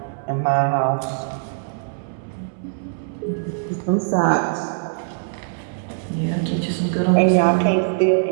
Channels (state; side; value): silent; left; digital silence